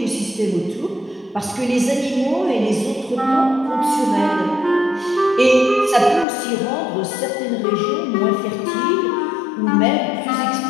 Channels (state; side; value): drops out; right; at 6.2 s